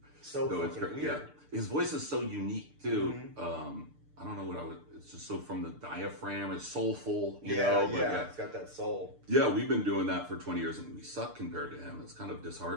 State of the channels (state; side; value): late; left; 6.8 ms